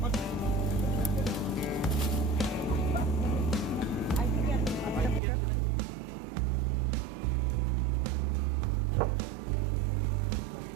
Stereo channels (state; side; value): drops out; left; at 5.2 s